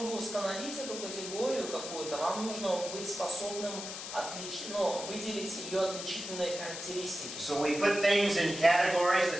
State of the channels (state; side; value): noise; left; hiss, 8 dB below the sound